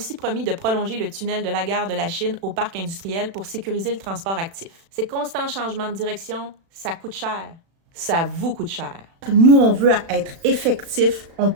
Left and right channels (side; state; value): left; late; 36 ms